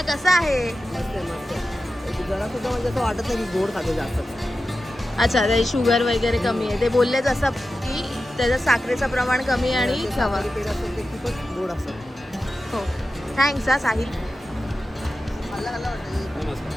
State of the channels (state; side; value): normal; both; correlation 0.92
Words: कसा आहे? मस्त आहे मस्त आहे. जरा सुद्धा म्हणजे असं वाटत नाही की गोड खातो जास्त. अच्छा ते शुगर वगैरे कमी आहे. ते बोललेच असं की त्याचं साखरेचं प्रमाण कमी आहे आणि खवा. पेढा असतो ते खूपच गोड असतात. हो थँक्स हा साहिल.